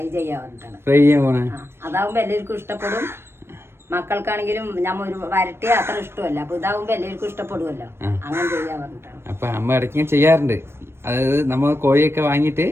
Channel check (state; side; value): late; left; 0.12 ms